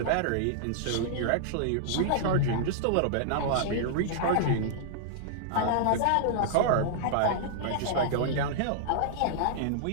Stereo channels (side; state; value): both; different; correlation -0.01